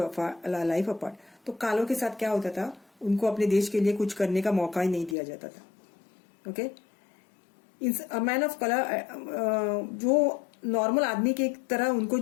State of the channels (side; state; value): right; drops out; at 5.2 s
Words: a life apart. तो कालों के साथ क्या होता था, उनको अपने देश के लिए कुछ करने का मौका ही नहीं दिया जाता था. Okay. a man of color, जो नॉर्मल आदमी के तरह उनको